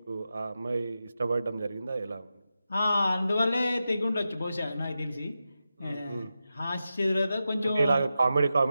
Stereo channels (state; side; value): inverted; both; correlation -0.90